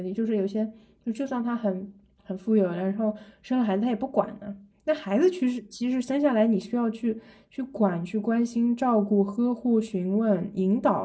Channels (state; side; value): identical; both; correlation 1.00